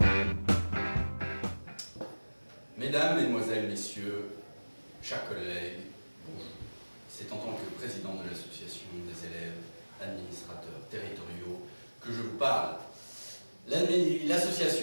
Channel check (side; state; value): both; inverted; correlation -1.00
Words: Mesdames, Mesdemoiselles, Messieurs, chers collègues, bonjour. C'est en tant que président de l'association des élèves administrateurs territoriaux que je vous parle.